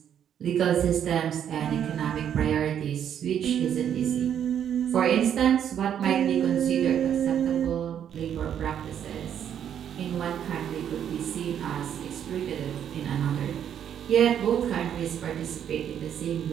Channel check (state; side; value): quieter; left; 9.3 dB